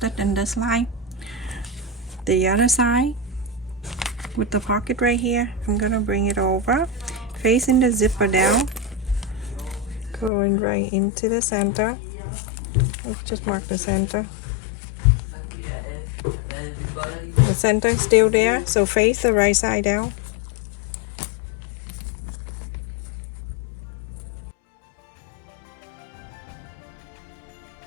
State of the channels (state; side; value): drops out; right; at 10.3 s